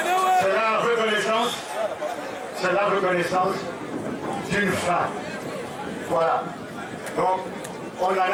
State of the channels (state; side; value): identical; both; correlation 1.00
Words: C'est la reconnaissance d'une fin. Voilà. Donc, on n'en